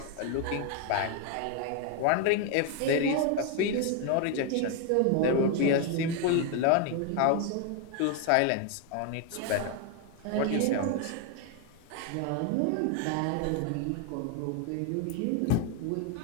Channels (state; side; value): different; both; correlation 0.01